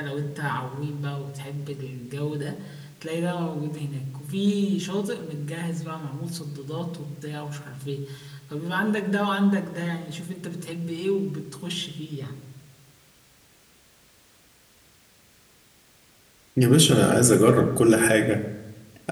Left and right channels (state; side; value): identical; both; correlation 1.00